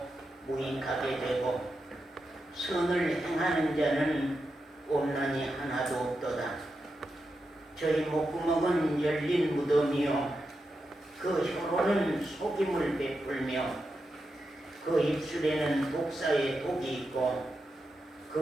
무익하게 되고 선을 행하는 자는 없나니 하나도 없도다. 저희 목구멍은 열린 무덤이요 그 혀로는 속임을 베풀며 그 입술에는 독사의 독이 있고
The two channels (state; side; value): normal; both; correlation 0.88